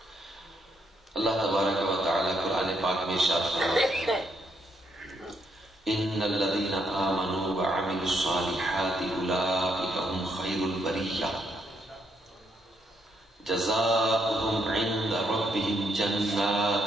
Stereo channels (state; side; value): normal; both; correlation 0.75